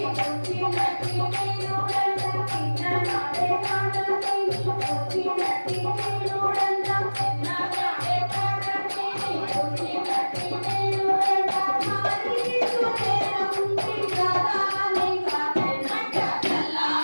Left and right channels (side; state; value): both; inverted; correlation -1.00